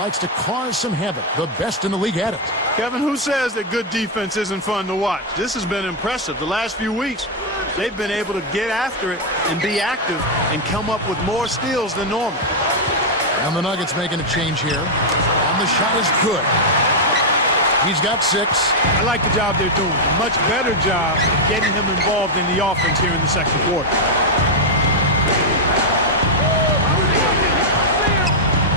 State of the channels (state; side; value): normal; both; correlation -0.01